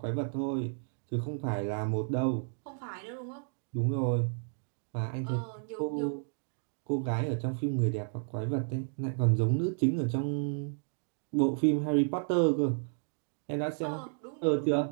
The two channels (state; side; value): silent; left; digital silence